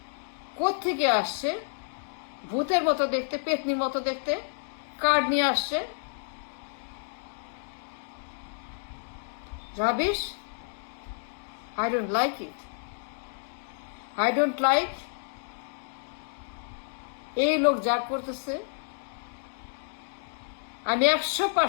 কোত্থেকে আসছে? ভূতের মতো দেখতে, পেতনির মতো দেখতে কার্ড নিয়ে আসছে। Rubbish. I don't like it. I don't like এই লোক যা করতেছে। আমি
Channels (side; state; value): right; silent; digital silence